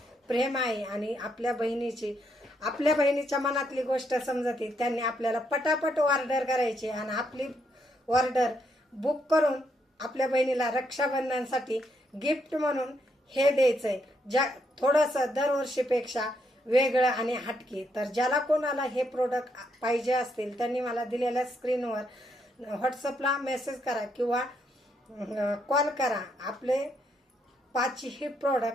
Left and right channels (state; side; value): normal; both; correlation 0.77